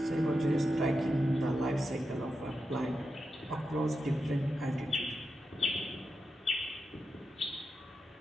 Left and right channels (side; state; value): both; normal; correlation 0.88